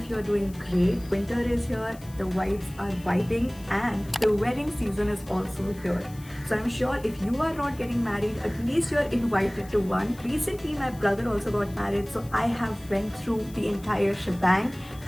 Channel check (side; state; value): left; noise; hiss, 22 dB below the sound